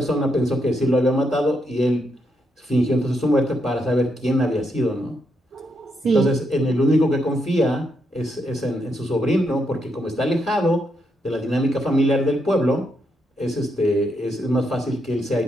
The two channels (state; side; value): normal; both; correlation 0.80